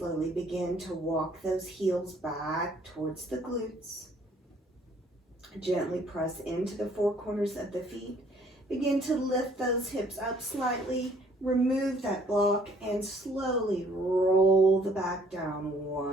begin to walk those heels back towards the glutes. Gently press into the four corners of the feet. Begin to lift those hips up slightly. Remove that block and slowly roll the back down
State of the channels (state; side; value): normal; both; correlation 0.61